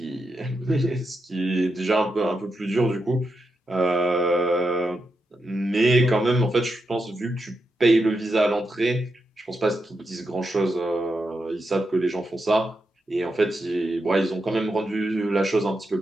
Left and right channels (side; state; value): both; normal; correlation 0.86